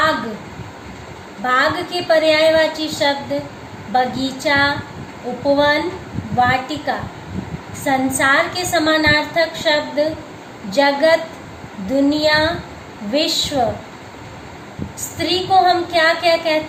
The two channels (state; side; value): identical; both; correlation 1.00